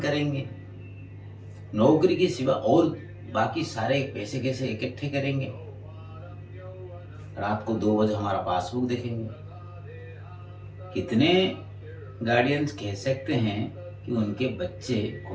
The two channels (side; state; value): both; identical; correlation 1.00